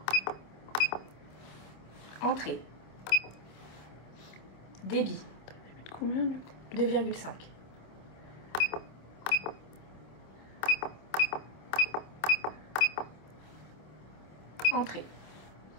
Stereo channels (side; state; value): right; late; 26 ms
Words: Entrée. Débit. 2,5. Entrée.